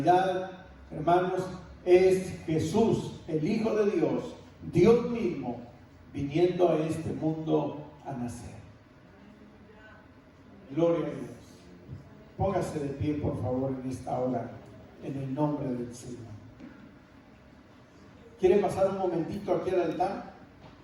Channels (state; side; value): identical; both; correlation 1.00